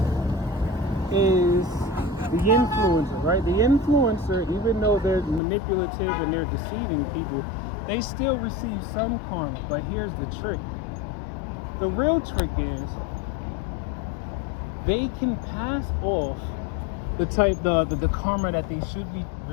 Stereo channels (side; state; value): right; drops out; at 5.4 s